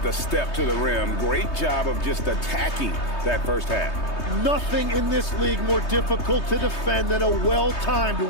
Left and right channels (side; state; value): right; late; 3.2 ms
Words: the step to the rim. Great job of just attacking that first half. Nothing in this league more difficult to defend than a well-timed